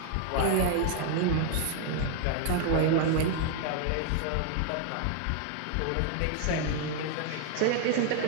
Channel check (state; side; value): different; both; correlation 0.00